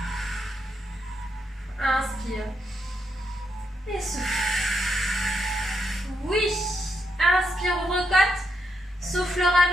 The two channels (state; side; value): normal; both; correlation 0.81